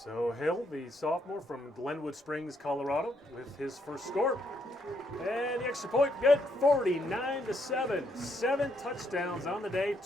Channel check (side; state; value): both; normal; correlation 0.74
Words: So Hill, the sophomore from Glenwood Springs, Colorado, with his first score. And the extra point, good, 49-7. 7 touchdowns on the day,